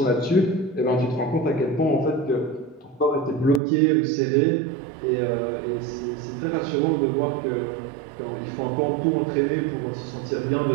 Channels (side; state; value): left; drops out; at 3.6 s